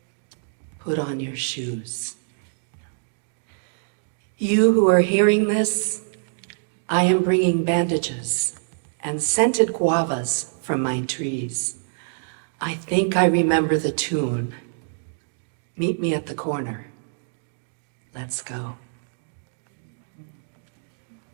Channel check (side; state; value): left; silent; digital silence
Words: put on your shoes. You who are hearing this, I am bringing bandages and scented guavas from my trees. I think I remember the tune. Meet me at the corner. Let's go.